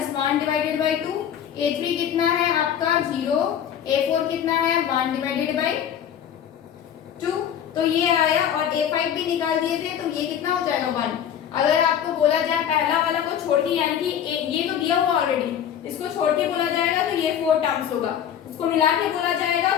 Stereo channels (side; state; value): right; quieter; 9.3 dB